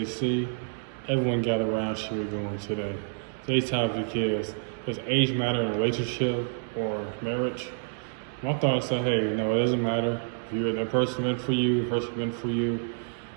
Everyone gather around, shit we're going today. Today's topic is, does age matter in a relationship or marriage? My thoughts are, hey, it doesn't matter. If you're that person meant for you, the person meant for you.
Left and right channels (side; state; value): left; silent; 59 dB below the other